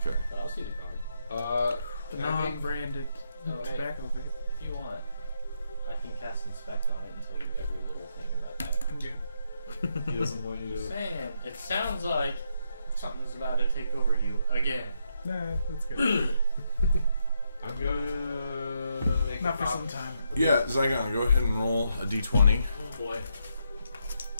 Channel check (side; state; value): both; inverted; correlation -0.79